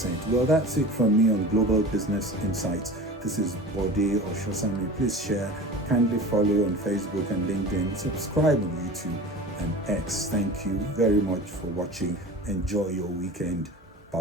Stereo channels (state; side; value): normal; both; correlation 0.35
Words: Well, that's it from me on Global Business Insights. This is Bode Oshosami. Please share, kindly follow on Facebook and LinkedIn, subscribe on YouTube and X. Thank you very much for watching. Enjoy your weekend.